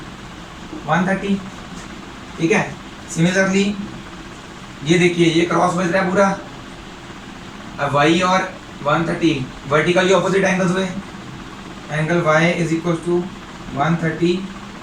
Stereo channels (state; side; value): identical; both; correlation 1.00